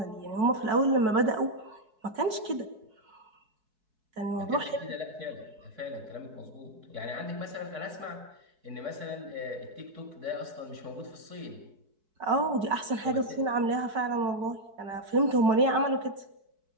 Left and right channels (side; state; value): left; late; 4.6 ms